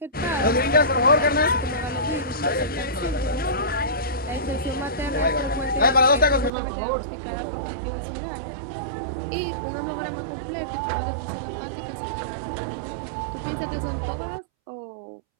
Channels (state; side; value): drops out; left; at 6.5 s